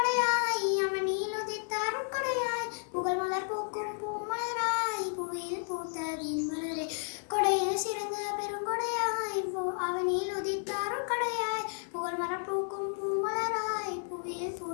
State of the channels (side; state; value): right; silent; 56 dB below the other